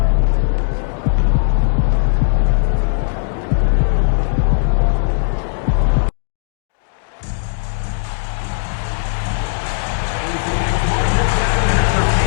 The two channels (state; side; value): silent; right; digital silence